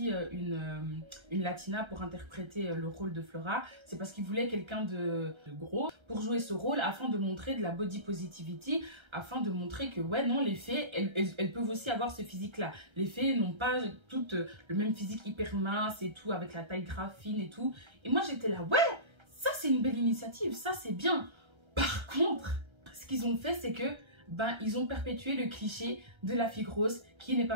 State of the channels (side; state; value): left; late; 1.3 ms